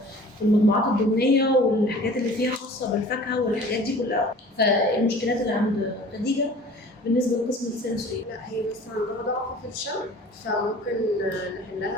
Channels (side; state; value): both; normal; correlation 0.46